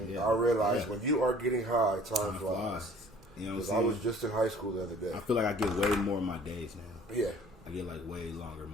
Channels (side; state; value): both; normal; correlation 0.52